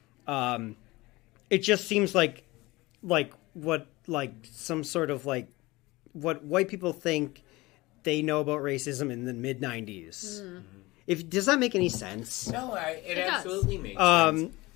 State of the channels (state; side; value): quieter; right; 21.2 dB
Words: It just seems like some sort of like what white people think they know about racism in the mid 90s. Does that make any sense? No, it does. absolutely makes sense.